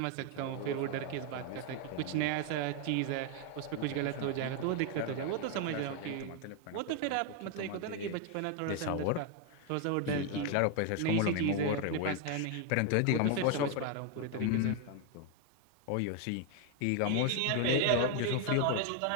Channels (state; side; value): different; both; correlation 0.01